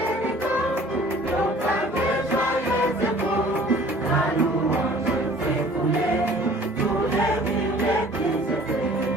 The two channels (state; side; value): normal; both; correlation 0.50